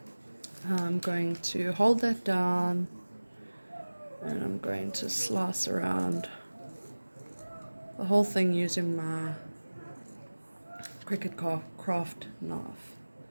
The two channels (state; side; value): inverted; both; correlation -1.00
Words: I'm going to hold that down, and I'm going to slice around the whole thing using my Cricut Craft knife.